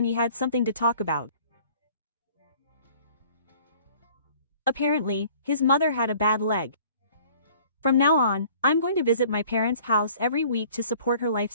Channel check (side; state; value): both; inverted; correlation -0.52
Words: he had something to talk about. Apparently, his mother had a bad leg. From now on, I'm going to visit my parents' house every week to support her